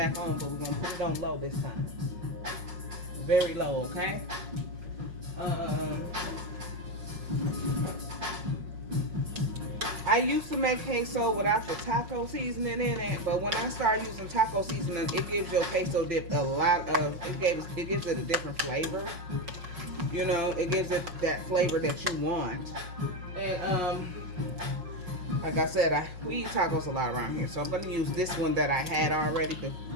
on, but we're gonna put it on low this time. Very low, okay? I used to make queso without the taco seasoning in it, but when I start using taco seasoning, it gives your queso dip it gives it a different flavor. You know, it gives it that flavor that you want. And like I said, we eat tacos a lot around here, so I'm gonna use this one that I had already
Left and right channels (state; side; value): late; left; 5.5 ms